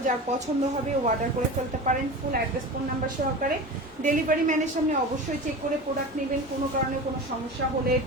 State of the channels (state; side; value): normal; both; correlation 0.31